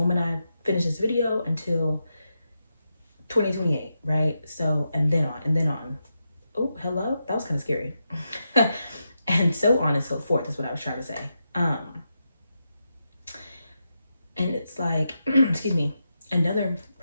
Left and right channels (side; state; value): both; inverted; correlation -0.87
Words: I finish this video until 2028, right? So, and then on. Oh, hello? That was kind of scary. And so on and so forth is what I was trying to say. And it's like, excuse me, another